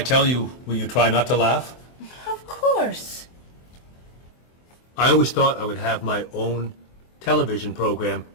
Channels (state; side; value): late; right; 24 ms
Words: tell you, will you try not to laugh? Of course. I always thought I would have my own television program